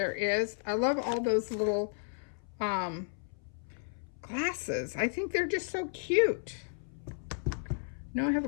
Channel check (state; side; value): silent; right; 56 dB below the other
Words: is? I love all those little glasses. I think they're just so cute. No, I have